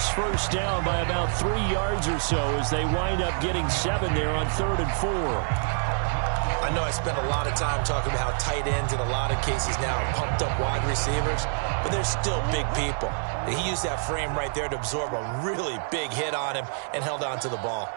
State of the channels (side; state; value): left; silent; 60 dB below the other